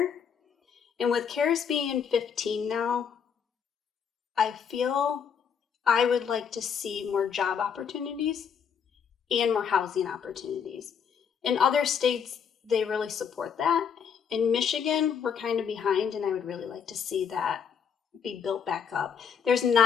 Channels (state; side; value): quieter; right; 7.2 dB